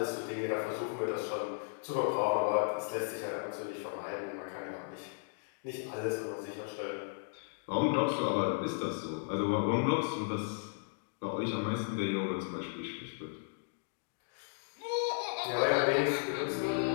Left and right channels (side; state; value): right; silent; digital silence